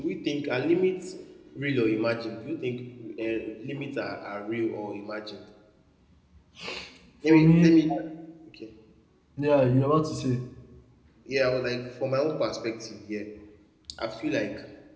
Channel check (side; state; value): both; identical; correlation 1.00